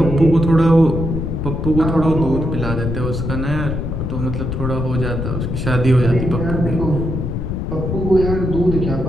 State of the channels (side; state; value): left; noise; rumble, 3 dB below the sound